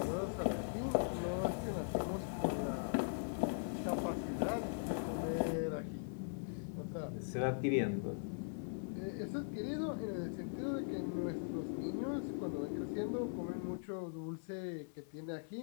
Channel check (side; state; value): right; silent; 51 dB below the other